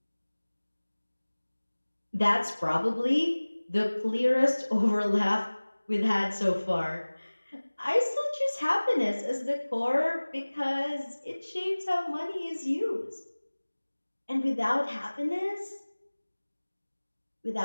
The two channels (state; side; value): inverted; both; correlation -1.00